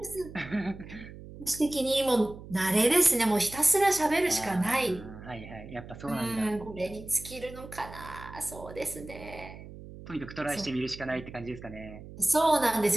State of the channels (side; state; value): right; noise; hum, 15 dB below the sound